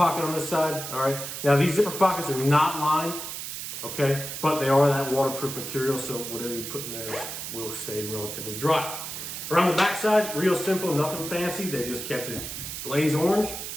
on this side, all right? Now these zipper pockets are not lined, okay? But they are that waterproof material, so whatever you put in there will stay relatively dry. Around the back side, real simple, nothing fancy. They just kept it blaze orange,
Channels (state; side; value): noise; right; hiss, 7 dB below the sound